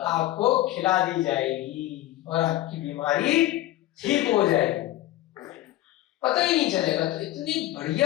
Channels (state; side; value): quieter; right; 15.3 dB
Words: खिला दी जाएगी और आपकी बीमारी ठीक हो जाएगी, पता ही नहीं चलेगा। तो इतनी